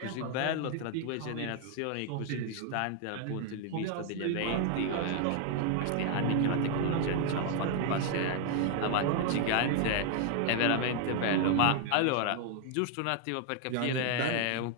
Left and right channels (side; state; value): both; different; correlation 0.00